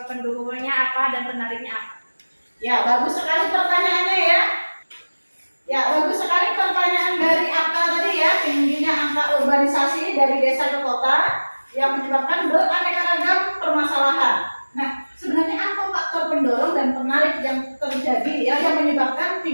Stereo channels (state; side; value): inverted; both; correlation -1.00